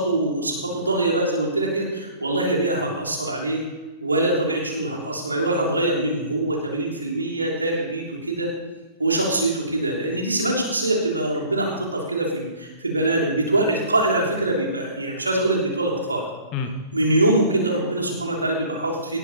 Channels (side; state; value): both; inverted; correlation -0.51